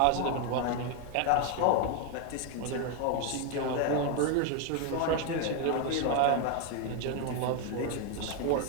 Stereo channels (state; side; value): different; both; correlation 0.01